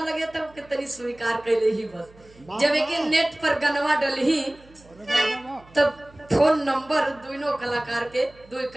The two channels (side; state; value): right; noise; hum, 26 dB below the sound